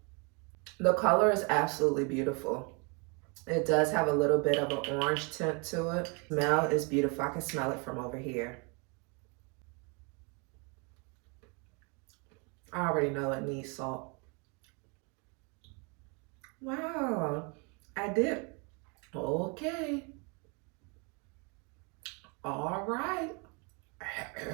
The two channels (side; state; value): left; quieter; 33.0 dB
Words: The color is absolutely beautiful. It does have a little bit of an orange tint to it. Smell is beautiful. I can smell it from over here. I already know it needs salt. Wow, I did. Okay. All right.